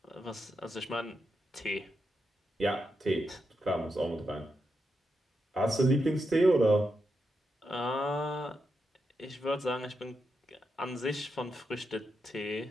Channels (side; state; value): both; normal; correlation 0.85